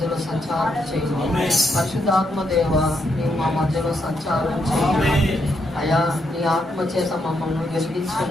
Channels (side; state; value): both; normal; correlation 0.78